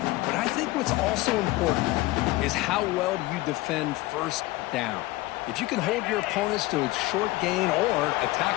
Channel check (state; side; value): quieter; right; 19.1 dB